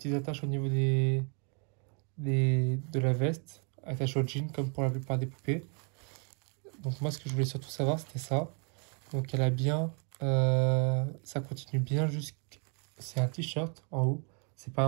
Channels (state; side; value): quieter; left; 37.0 dB